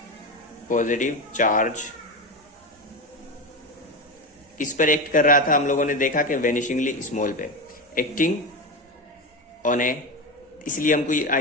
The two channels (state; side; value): normal; both; correlation 0.19